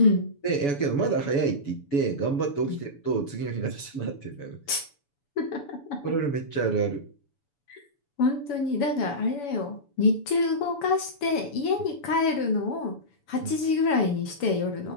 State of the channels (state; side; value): late; right; 7.0 ms